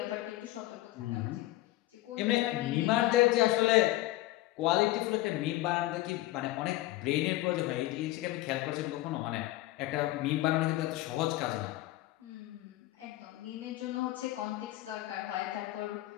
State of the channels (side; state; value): right; quieter; 17.1 dB